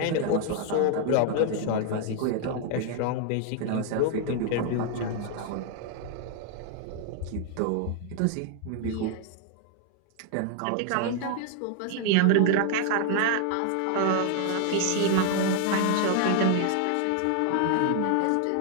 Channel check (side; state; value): both; different; correlation 0.00